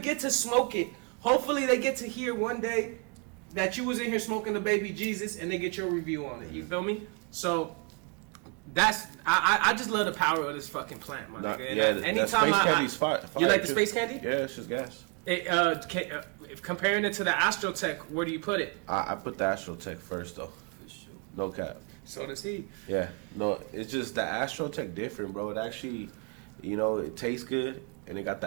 to smoke it, hopefully they get to hear one day that you was in here smoking the baby Jesus, and they get your review on it. You feel me? So that's I just love the power of this fucking plant, my nigga. And anytime you like the space candy? Yeah, it's just gas. Comparing it to the Astrotech, where do you put it? I put the Astrotech first, though. For sure. No cap. So does he. Yeah, no, it's just the Astrotech different, bro. It actually, it tastes good and it got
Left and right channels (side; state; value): left; quieter; 32.6 dB